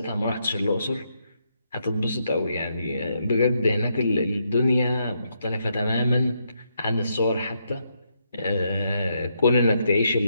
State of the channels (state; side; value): inverted; both; correlation -0.79